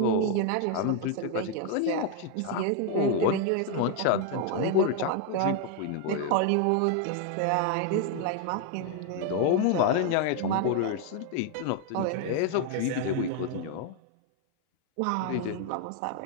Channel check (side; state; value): both; different; correlation 0.00